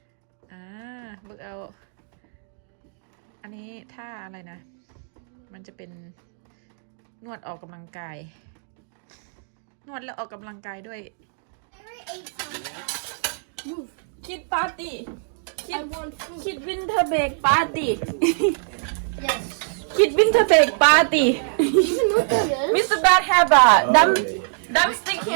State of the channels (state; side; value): silent; left; digital silence